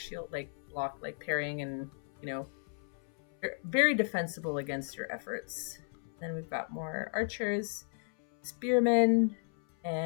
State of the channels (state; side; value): silent; right; 55 dB below the other